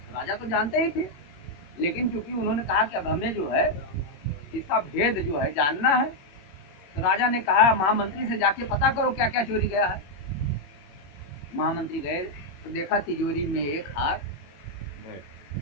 तो राजा तो जानते ही थे, लेकिन क्योंकि उन्होंने कहा कि अब हमें जो है इसका भेद जो है जानना है, तो राजा ने कहा महामंत्री से जाके पता करो क्या क्या चोरी गया है। महामंत्री गए तो देखा तिजोरी में एक हार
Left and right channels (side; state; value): right; late; 21 ms